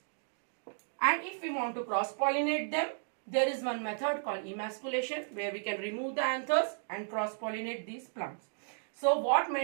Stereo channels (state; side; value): silent; left; digital silence